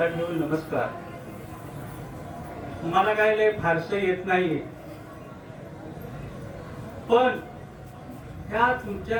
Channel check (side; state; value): both; identical; correlation 1.00